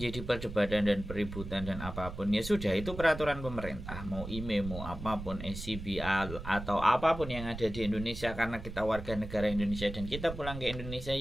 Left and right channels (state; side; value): noise; right; rumble, 9 dB below the sound